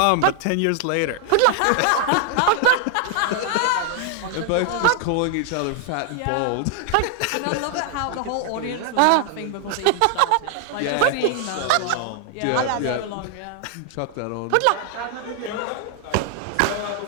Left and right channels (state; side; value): different; both; correlation 0.00